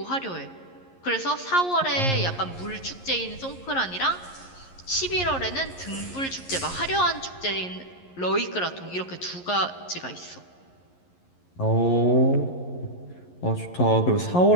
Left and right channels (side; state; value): right; late; 11 ms